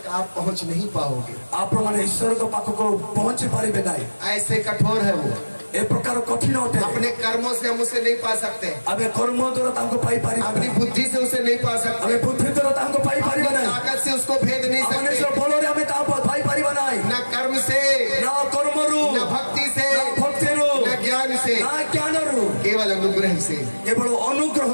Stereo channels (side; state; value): both; inverted; correlation -1.00